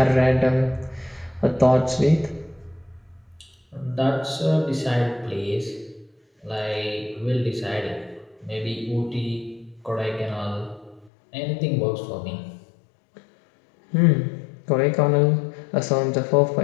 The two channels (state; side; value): drops out; right; at 11.1 s